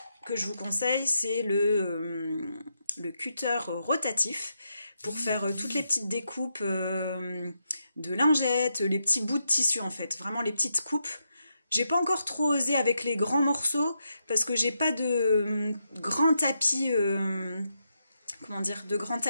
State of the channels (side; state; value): both; inverted; correlation -0.83